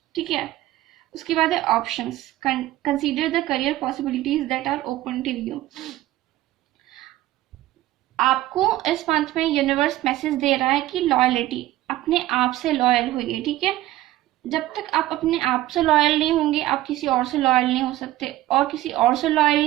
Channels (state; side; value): quieter; left; 15.4 dB